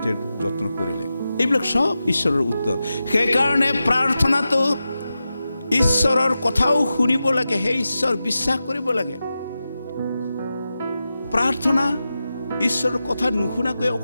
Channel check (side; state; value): both; inverted; correlation -0.92